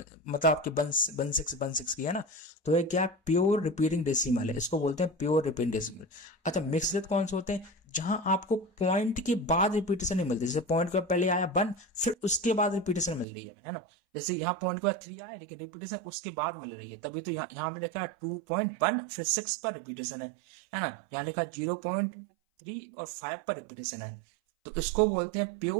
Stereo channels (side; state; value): left; drops out; at 13.2 s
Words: आपके 1.6 की है ना। तो ये क्या है? प्योर रिपीटिंग डेसिमल है, इसको बोलते हैं प्योर रिपीटिंग डेसिमल। अच्छा, मिक्स्ड कौन से होते हैं? जहां आपको पॉइंट के बाद रिपीटेशन नहीं मिलती। जैसे पॉइंट के पहले आया 1, फिर उसके बाद रिपीटेशन मिल रही है ना। जैसे यहाँ पॉइंट के बाद 3 आया, लेकिन रिपीटेशन उसके बाद मिल रही है, तभी तो यहाँ में लिखा है 2.1 फिर 6 पर रिपीटेशन है ना। यहाँ लिखा 0.3 और 5 पर रिपीटेशन है। तो इसको बोलते हैं